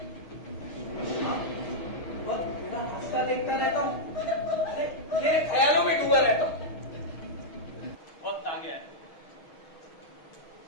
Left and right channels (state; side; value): late; right; 6.5 ms